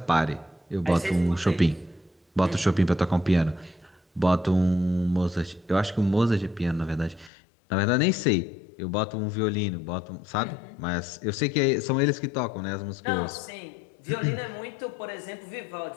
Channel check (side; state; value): right; drops out; at 7.3 s